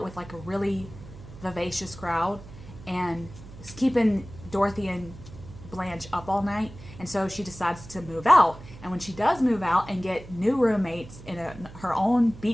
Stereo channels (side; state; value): right; noise; hum, 16 dB below the sound